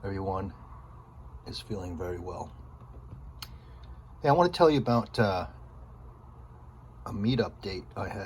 everyone is feeling very well. Hey, I want to tell you about a meetup date I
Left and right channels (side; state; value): both; identical; correlation 1.00